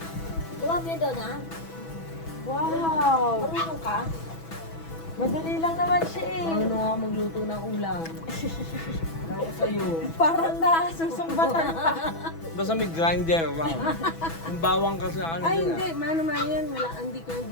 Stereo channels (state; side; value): late; right; 6.1 ms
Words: Gawa mo yun doon, ha? Wow! Marunong ka? Madali lang naman siya eh. Ano nga magluto ng ulam? Ako sa'yo. Parang nasusumbatan pa. Basta may grinder lang. Yung bawang kasi ano Ay, yun hindi. Mano yan. Wala. Hindi ko yung